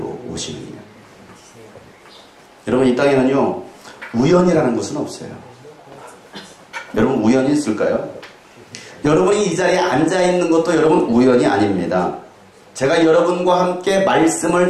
오시느니라. 여러분, 이 땅에는요 우연이라는 것은 없어요. 여러분, 우연이 있을까요? 여러분이 이 자리에 앉아있는 것도 여러분 우연이 아닙니다. 제가 여러분과 함께 말씀을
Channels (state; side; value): identical; both; correlation 1.00